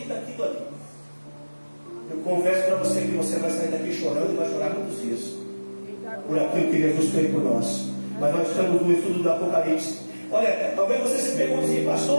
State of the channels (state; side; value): inverted; both; correlation -1.00